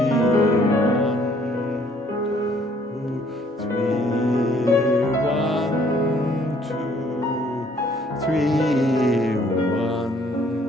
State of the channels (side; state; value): both; normal; correlation 0.62